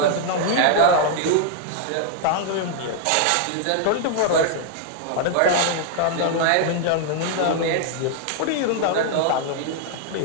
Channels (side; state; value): both; different; correlation 0.00